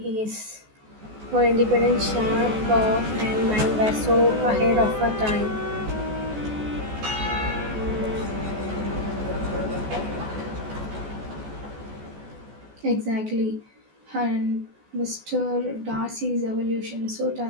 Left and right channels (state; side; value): late; left; 14 ms